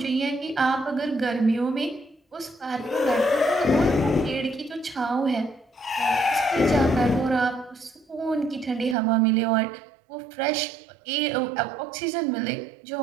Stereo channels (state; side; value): drops out; left; at 9.0 s